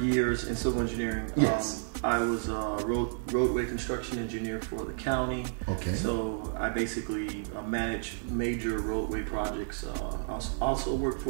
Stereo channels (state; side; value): silent; left; digital silence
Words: in civil engineering, yes. I was a roadway construction engineer for the county. Okay. So I basically manage major roadway projects. I also worked